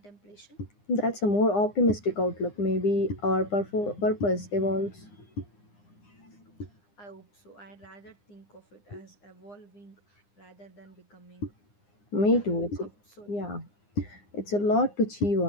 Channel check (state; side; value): late; right; 9.8 ms